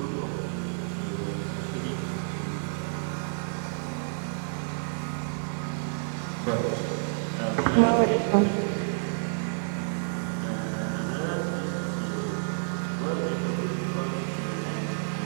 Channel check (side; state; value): left; silent; digital silence